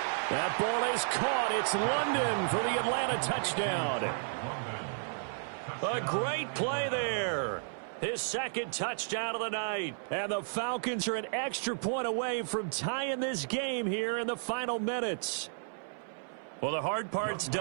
That ball is caught. It's London for the Atlanta touchdown. A great play there. His second touchdown of the night. And the Falcons are an extra point away from tying this game here in the final minutes. Well, the hard part's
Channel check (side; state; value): left; silent; 56 dB below the other